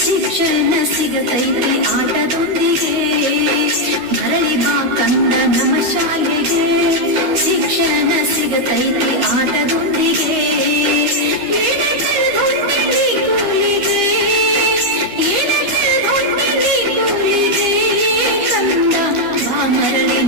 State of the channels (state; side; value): late; left; 12 ms